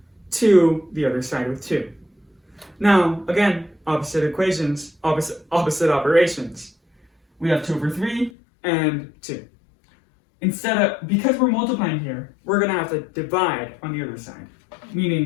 to the other side with 2. Now, again, opposite equations, opposite operations. We have 2 over 3 and 2. Because we're multiplying here, we're going to have to divide on the other side.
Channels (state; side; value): drops out; right; at 8.3 s